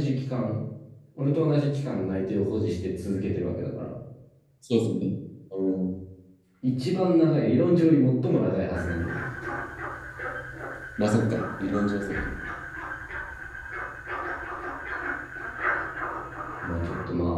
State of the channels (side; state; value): both; identical; correlation 1.00